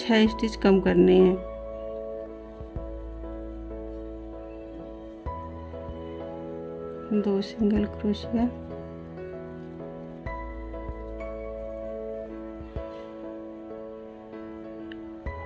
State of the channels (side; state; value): both; identical; correlation 1.00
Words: स्टिच कम करने हैं। दो सिंगल क्रोशिया,